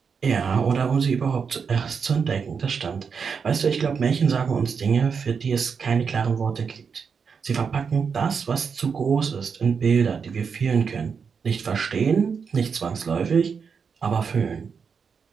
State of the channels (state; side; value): quieter; left; 6.0 dB